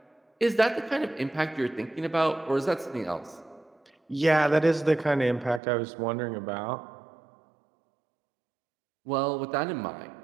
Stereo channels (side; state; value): left; drops out; at 5.6 s